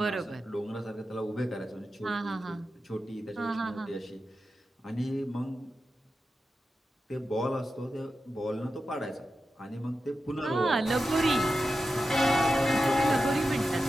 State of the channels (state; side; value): normal; both; correlation 0.91